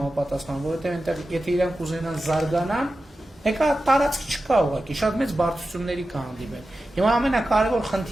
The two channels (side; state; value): both; normal; correlation 0.93